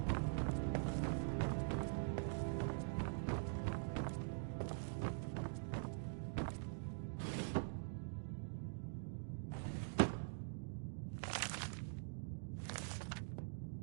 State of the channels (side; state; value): left; silent; digital silence